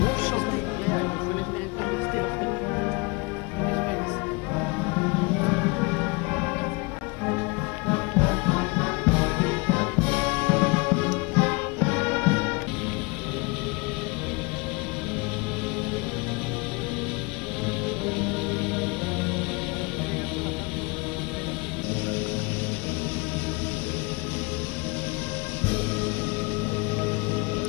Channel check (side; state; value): right; quieter; 28.4 dB